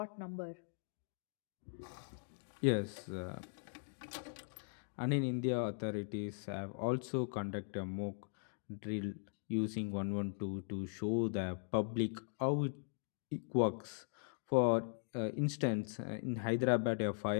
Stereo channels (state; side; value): silent; right; digital silence